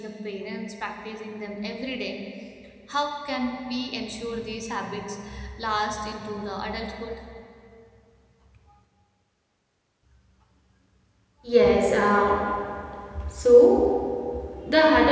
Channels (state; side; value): identical; both; correlation 1.00